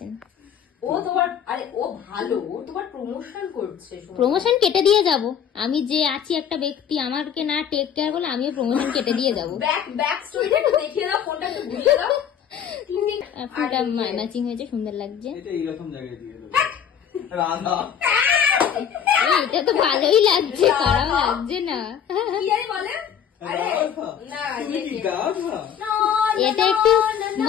ও তোমার, আরে ও ভালো, ও তোমার প্রমোশন করছে। প্রমোশন কেটে দিয়ে যাব আমি, যে আছি একটা ব্যক্তি, আমাকে না টেক কেয়ার করলে আমিও প্রমোশন কেটে দিয়ে যাবো। ব্যাক স্টোরিটা একটু দেখিয়ে দাও, ফোনটা একটু ঘুরিয়ে দাও। ফুলটা ম্যাচিং হয়েছে, সুন্দর লাগছে। এটা তো ভালোই লাগছে, খারাপ লাগছে না। এটা একটু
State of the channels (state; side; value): quieter; right; 8.4 dB